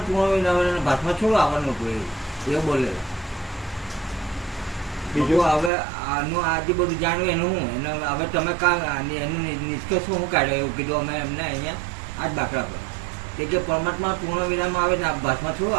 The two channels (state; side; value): drops out; left; at 5.7 s